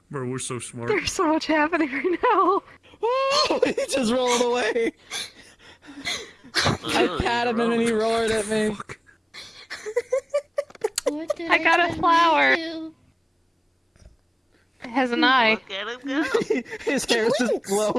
Bro, we're so smart. There's so much happening right now. Oh, he just rolled away. I pat him and then he roared at me. I got a flower. It has an eye. His hair's just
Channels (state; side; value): identical; both; correlation 1.00